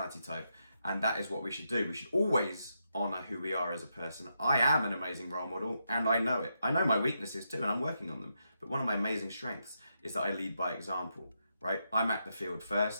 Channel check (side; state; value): both; inverted; correlation -0.83